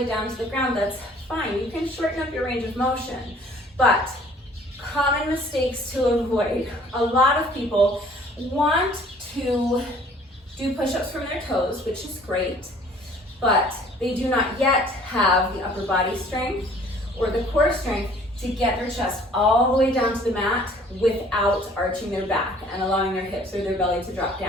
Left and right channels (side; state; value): both; normal; correlation 0.55